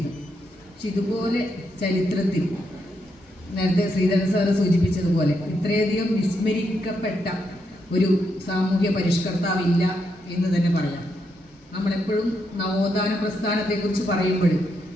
പക്ഷെ ഇതുപോലെ ചരിത്രത്തിൽ നേരത്തെ ശ്രീധരൻ സാറ് സൂചിപ്പിച്ചതുപോലെ ഇത്രയധികം വിസ്മരിക്കപ്പെട്ട ഒരു സാമൂഹ്യ പരിഷ്കർത്താവില്ല എന്ന് തന്നെ പറയാം. നമ്മളെപ്പോഴും നവോത്ഥാന പ്രസ്ഥാനത്തെക്കുറിച്ച് പറയുമ്പോൾ,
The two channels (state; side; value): normal; both; correlation 0.80